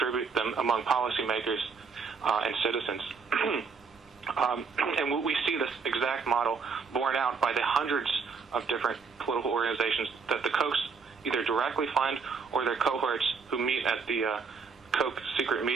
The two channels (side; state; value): left; quieter; 5.3 dB